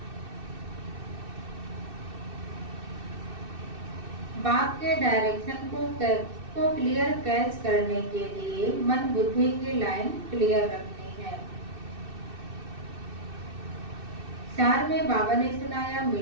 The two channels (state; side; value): late; left; 2.6 ms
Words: बाप के डायरेक्शन को क्लियर कैच करने के लिए मन बुद्धि की लाइन क्लियर रखनी है। चार में बाबा ने सुनाया,